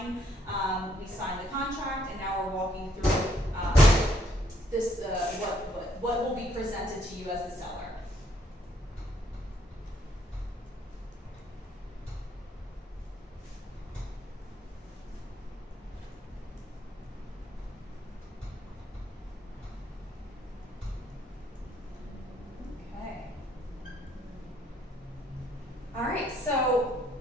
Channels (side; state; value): both; normal; correlation 0.68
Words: the contract, and now we're walking through this what will be presented to you as the seller. All right, so